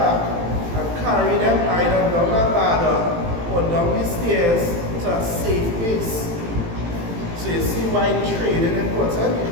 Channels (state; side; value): late; left; 18 ms